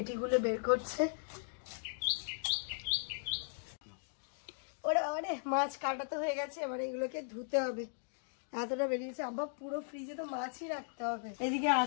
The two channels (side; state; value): right; silent; digital silence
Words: বের করছে। ওরে ওরে, মাছ কাটা তো হয়ে গেছে, এবার এগুলোকে ধুতে হবে। এতটা বেরিয়েছে আব্বা, পুরো ফ্রিজে তো মাছই রাখতে হবে। এদিকে